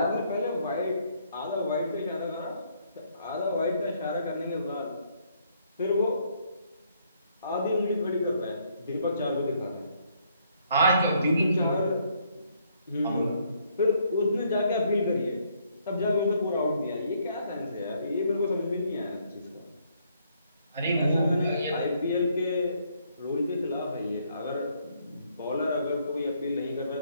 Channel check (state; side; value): inverted; both; correlation -0.69